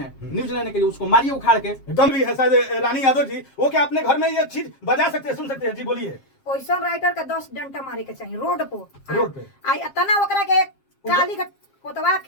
न्यूज लेने के लिए, उसको मारिए उखाड़ के। एकदम भी है शायद रानी यादव जी, वो क्या अपने घर में ये चीज बजा सकते हैं, सुन सकते हैं? जी बोलिए। ओइसन राइटर के 10 डंडा मारे के चाहिए रोड पे। रोड पे आई इतना ओकरा के काली कोतवा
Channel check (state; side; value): late; right; 7.4 ms